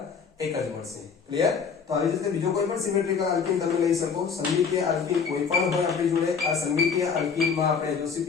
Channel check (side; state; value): right; quieter; 6.0 dB